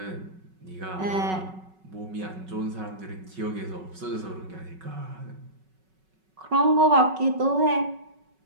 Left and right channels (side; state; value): left; late; 5.3 ms